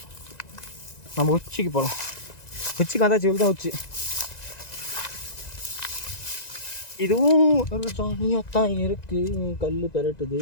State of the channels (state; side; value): late; right; 1.9 ms